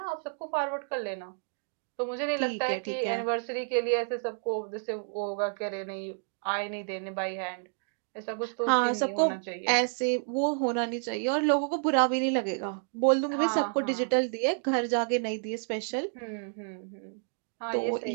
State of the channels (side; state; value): left; silent; digital silence